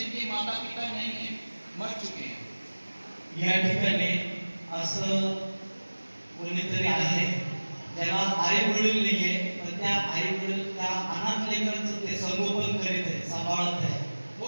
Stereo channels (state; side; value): inverted; both; correlation -1.00